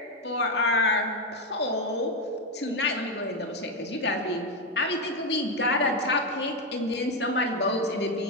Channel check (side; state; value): both; normal; correlation 0.08